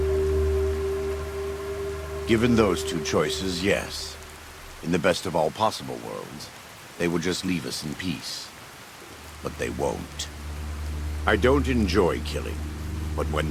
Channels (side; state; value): both; identical; correlation 1.00